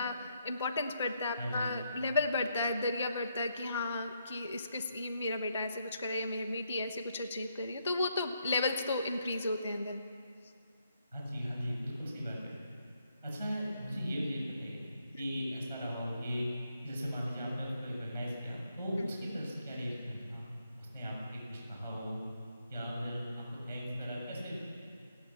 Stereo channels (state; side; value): inverted; both; correlation -0.77